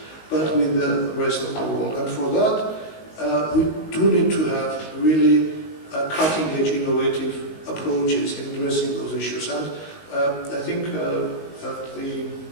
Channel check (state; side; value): late; right; 19 ms